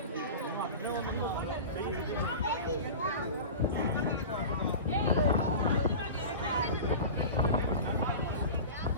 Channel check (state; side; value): inverted; both; correlation -0.32